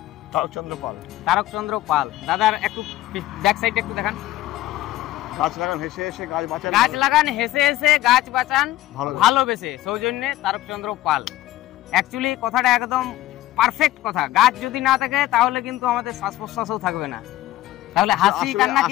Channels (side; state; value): right; quieter; 15.3 dB